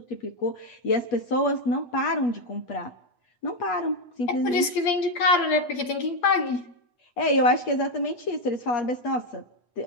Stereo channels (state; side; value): late; right; 8.6 ms